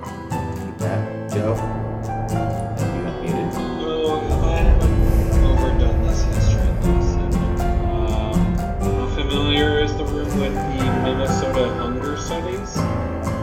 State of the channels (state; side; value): identical; both; correlation 1.00